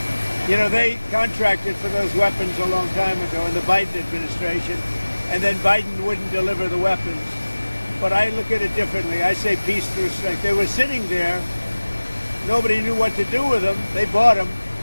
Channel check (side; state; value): both; inverted; correlation -1.00